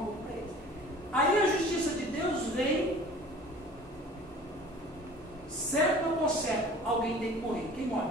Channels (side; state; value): both; normal; correlation 0.46